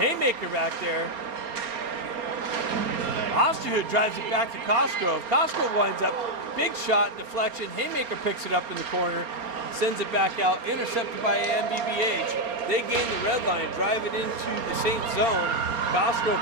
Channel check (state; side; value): late; left; 4.3 ms